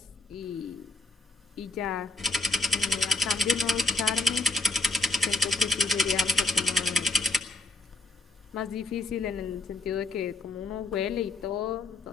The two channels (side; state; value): right; quieter; 3.2 dB